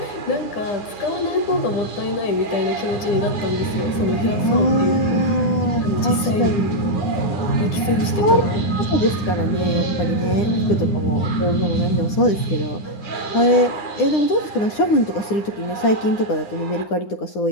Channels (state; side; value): late; right; 9.8 ms